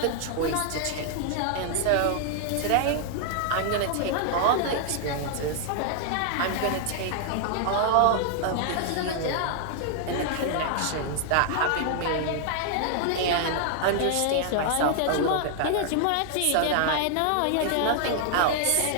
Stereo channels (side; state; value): both; different; correlation -0.01